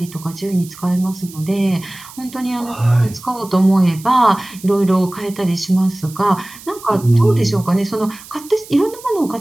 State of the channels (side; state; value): right; noise; hiss, 18 dB below the sound